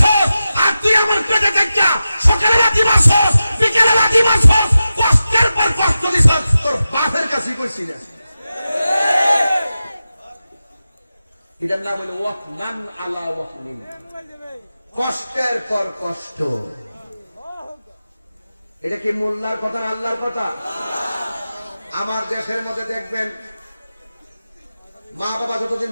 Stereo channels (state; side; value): inverted; both; correlation -0.93